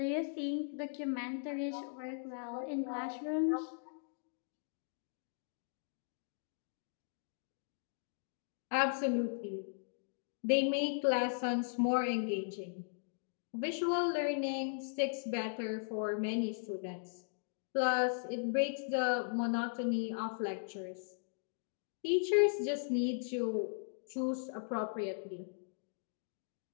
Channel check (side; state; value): right; silent; digital silence